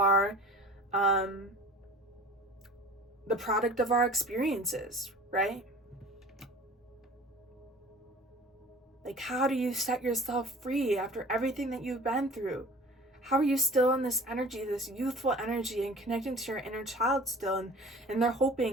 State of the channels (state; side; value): normal; both; correlation 0.43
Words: the product of our experiences, right? Like, how do you set yourself free after everything that you've been through? How are you still in this energy, this youthful energy, and connecting to your inner child still? And they're